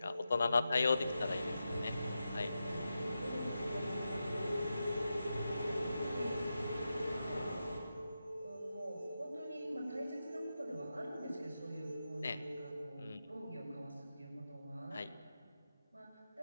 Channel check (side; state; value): both; inverted; correlation -0.90